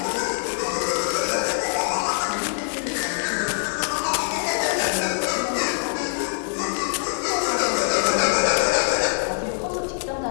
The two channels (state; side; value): silent; right; 63 dB below the other